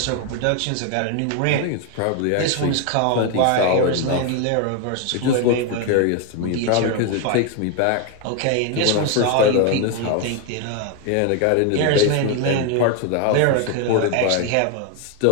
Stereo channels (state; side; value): different; both; correlation 0.01